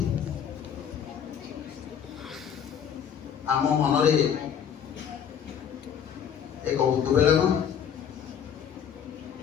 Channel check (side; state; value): right; quieter; 8.3 dB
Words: ଆମ ମନରେ ଏକ ଉଦ୍ବେଳନ